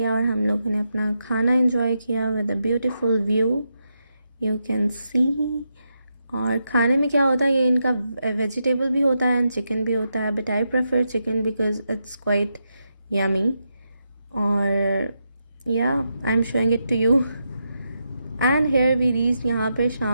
और हम लोगों ने अपना खाना एंजॉय किया with a beautiful view, you can सी। और खाने में क्या होता है, ये इनका वेजिटेबल भी होता है एंड चिकन भी होता है, but I prefer chicken because it's quite yummy. और या I am showing it to you. And here we reach, यहाँ पर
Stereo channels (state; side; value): inverted; both; correlation -0.84